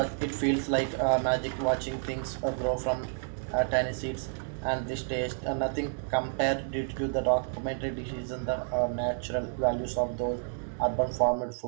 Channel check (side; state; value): left; silent; digital silence